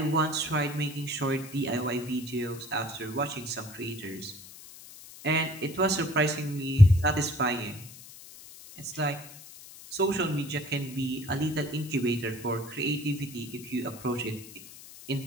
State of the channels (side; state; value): left; noise; hiss, 17 dB below the sound